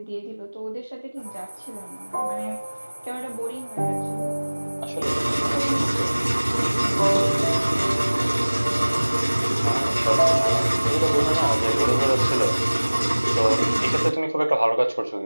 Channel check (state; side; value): inverted; both; correlation -1.00